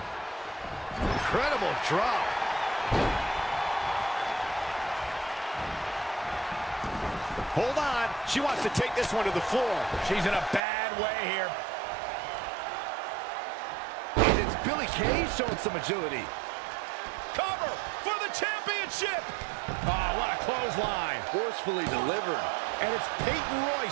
Incredible drop. Hold on. She wants to take this one to the floor. She's in a bad way here. And it's Billie Kay showing some agility. Cover for the championship. Oh, what a clothesline. Forcefully delivered. And it's Peyton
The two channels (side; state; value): left; drops out; at 10.6 s